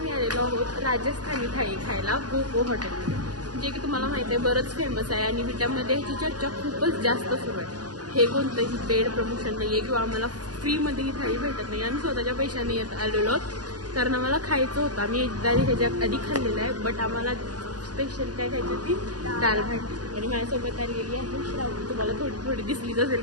आलेलो आहोत राजस्थानी थाळी खायला गोगो हॉटेलमध्ये, जे की तुम्हाला माहिती आहे बरंच फेमस आहे आणि विटामध्ये ह्याची चर्चा खूपच जास्त सुरू आहे. हे कोणतंही पेड प्रमोशन नाही आहे किंवा आम्हाला फ्रीमध्ये ही थाळी भेटत नाही. आम्ही स्वतःच्या पैशाने येत आलेलो कारण आम्हाला खायचं होतं. आम्ही एकदा ह्याच्या आधी खाल्लेलं आहे, बट आम्हाला स्पेशल काय खायची होती दाल भाटी. आणि माझ्यासोबत आलेली आहे श्रावणी, तुम्हाला थोडी थोडी दिसलीच असेल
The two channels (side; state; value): left; late; 0.69 ms